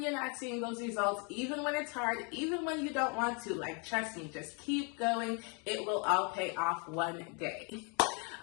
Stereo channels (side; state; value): right; quieter; 35.0 dB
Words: you're not seeing those results, even when it's hard, even when you don't want to. Like, trust me, just keep going. It will all pay off one day.